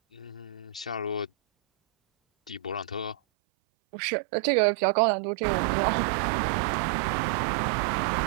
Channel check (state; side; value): drops out; left; at 3.2 s